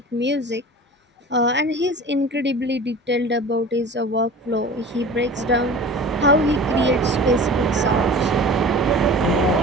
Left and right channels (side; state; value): both; normal; correlation 0.39